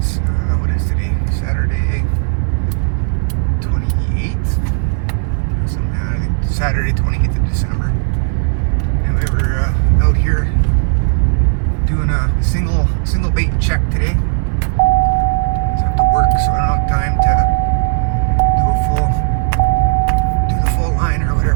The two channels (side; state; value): left; silent; digital silence